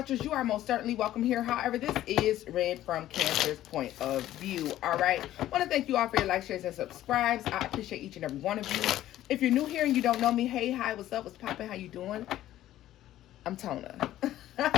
you are most certainly welcome here. However, this is read from Cancer's point of view, all right? I want to thank you all for your likes, shares, and subscribes. I appreciate each and every one of you. If you're new here and you don't know me, hey, hi, what's up, what's poppin', how you doing? I'm Tona.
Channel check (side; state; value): right; quieter; 13.5 dB